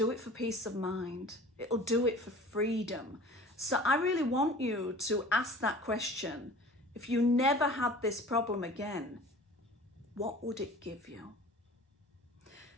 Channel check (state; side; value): normal; both; correlation 0.43